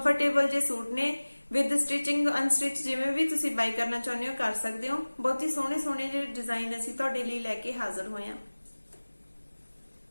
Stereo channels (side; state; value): both; inverted; correlation -1.00